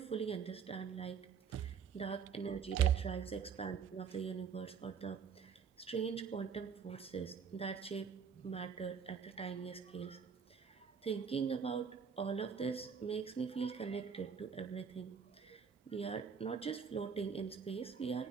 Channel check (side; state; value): left; quieter; 6.6 dB